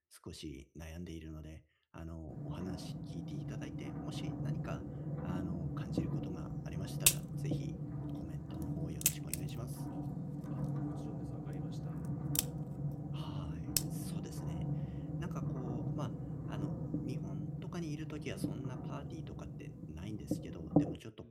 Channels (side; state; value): both; identical; correlation 1.00